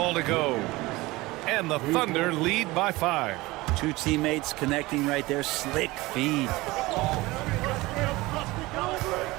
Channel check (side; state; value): left; quieter; 20.8 dB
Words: to go. And the Thunder lead by 5. 2 teammates connecting right there. Slick feed.